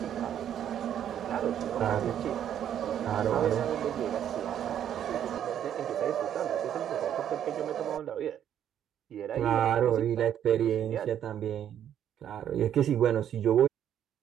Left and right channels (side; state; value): left; quieter; 9.9 dB